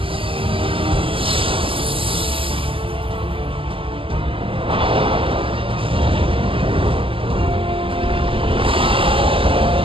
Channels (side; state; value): left; late; 0.25 ms